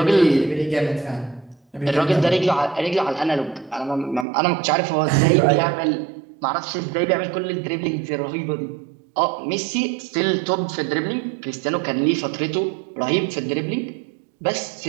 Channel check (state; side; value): drops out; left; at 4.2 s